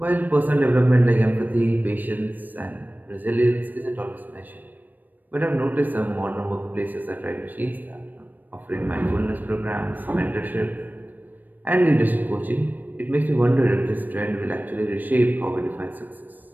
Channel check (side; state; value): left; late; 0.087 ms